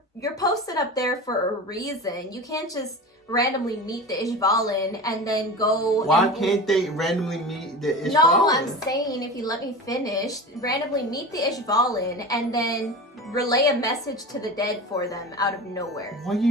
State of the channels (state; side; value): normal; both; correlation 0.31